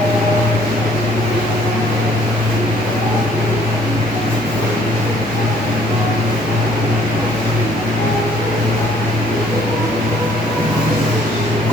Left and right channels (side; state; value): left; noise; hiss, 24 dB below the sound